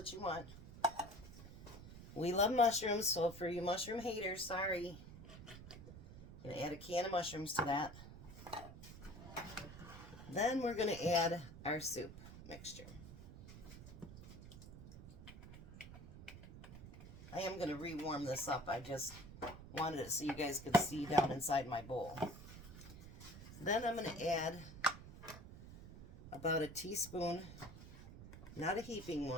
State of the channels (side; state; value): right; noise; rumble, 14 dB below the sound